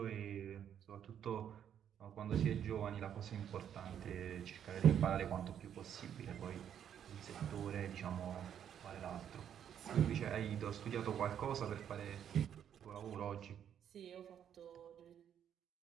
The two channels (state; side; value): quieter; left; 9.2 dB